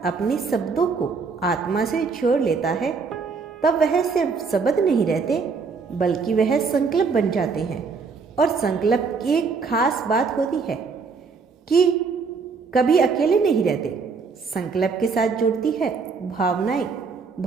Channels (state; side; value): quieter; left; 4.9 dB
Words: अपने शब्दों को आत्मा से जोड़ लेता है तब वह सिर्फ शब्द नहीं रहते बल्कि वह संकल्प बन जाते हैं। और संकल्प की एक खास बात होती है कि कभी अकेले नहीं रहते। संकल्प के साथ जुड़ती है भावनाएं,